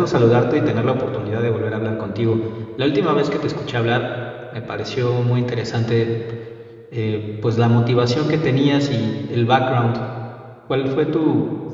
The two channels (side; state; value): both; identical; correlation 1.00